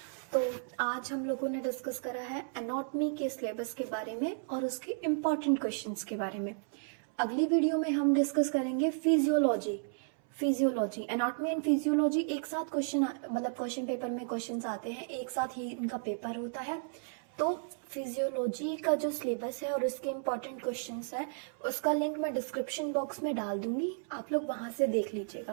तो आज हम लोगों ने डिस्कस करा है एनाटॉमी के सिलेबस के बारे में और उसके इम्पॉर्टेंट क्वेश्चंस के बारे में। अगली वीडियो में हम डिस्कस करेंगे फिजियोलॉजी, एनाटॉमी एंड फिजियोलॉजी एक साथ क्वेश्चन पेपर में क्वेश्चंस आते हैं, एक साथ ही इनका पेपर होता है। तो फिजियोलॉजी का जो सिलेबस है और उसके इम्पॉर्टेंट क्वेश्चंस है उसका लिंक मैं डिस्क्रिप्शन बॉक्स में डाल दूंगी, आप लोग वहां से देख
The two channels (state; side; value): silent; left; 55 dB below the other